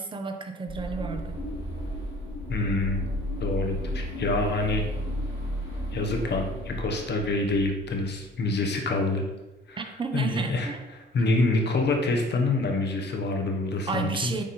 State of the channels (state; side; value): normal; both; correlation 0.50